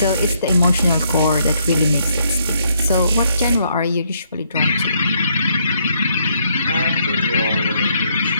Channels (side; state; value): both; inverted; correlation -0.72